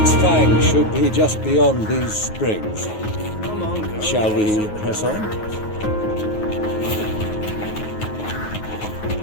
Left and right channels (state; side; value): late; right; 9.4 ms